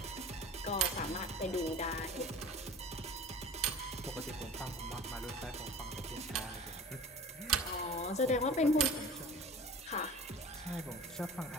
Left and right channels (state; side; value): normal; both; correlation 0.39